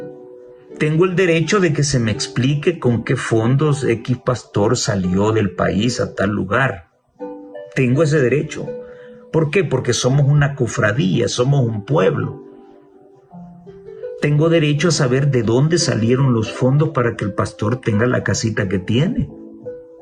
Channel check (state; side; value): identical; both; correlation 1.00